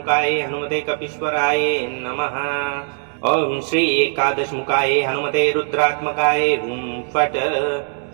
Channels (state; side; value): silent; left; digital silence